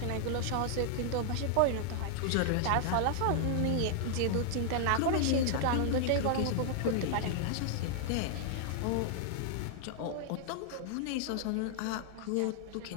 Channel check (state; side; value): different; both; correlation -0.01